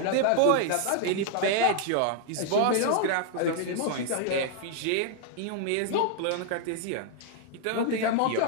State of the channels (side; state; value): both; different; correlation 0.00